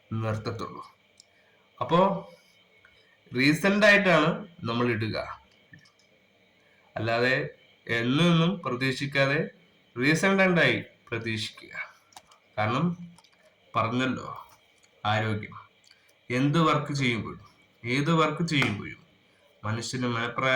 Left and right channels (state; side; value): identical; both; correlation 1.00